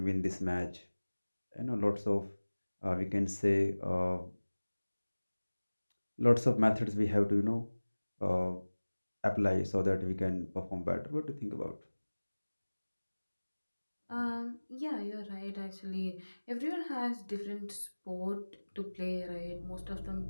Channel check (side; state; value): both; inverted; correlation -1.00